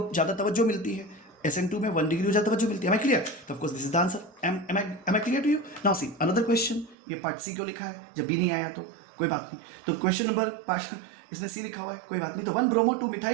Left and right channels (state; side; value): drops out; left; at 7.0 s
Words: ज़्यादा तवज्जो मिलती है, SN2 में 1 डिग्री हो जाता है, मिलती है। Am I clear? तो of course this is the answer. Am I clear to you? Now see another question. ये पार्ट C क्यों लिखा है, जब B नहीं आया तो कोई बात नहीं, तो क्वेश्चन नंबर पार्ट इसमें C लिखा हुआ है, कोई बात नहीं। तो 1 ब्रोमो 2